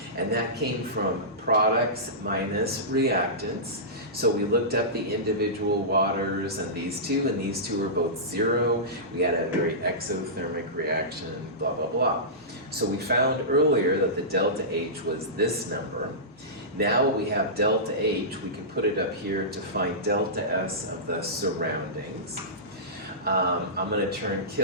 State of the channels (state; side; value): normal; both; correlation -0.18